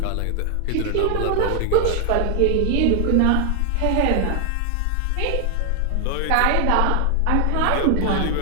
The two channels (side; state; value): both; different; correlation 0.00